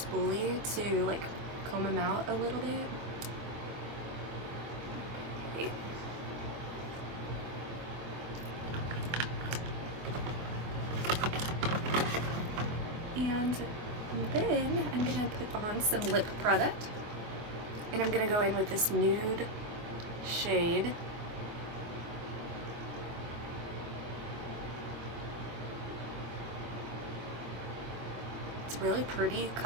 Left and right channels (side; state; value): left; late; 24 ms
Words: to like comb them out a little bit. Okay. And then I'm gonna put on some lip product, and I'm gonna go in with this nude shade. It's a really pretty